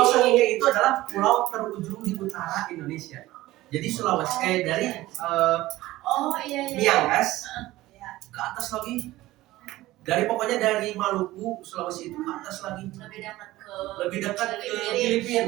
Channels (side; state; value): left; quieter; 17.1 dB